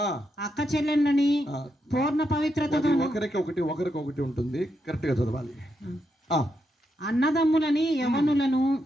అక్క చెల్లెళ్ళని పూర్ణ పవిత్రతతో. ఒకరికి ఉంటుంది, కరెక్ట్ గా చదవాలి. అన్నదమ్ములని, యవనులను,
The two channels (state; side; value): normal; both; correlation 0.82